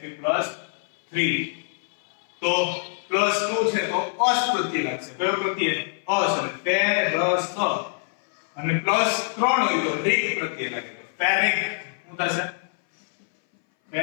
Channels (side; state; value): right; silent; 59 dB below the other